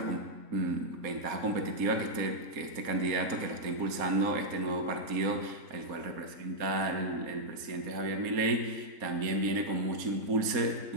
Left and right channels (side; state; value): left; late; 4.1 ms